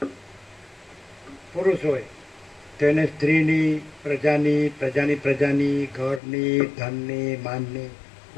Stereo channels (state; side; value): drops out; right; at 6.2 s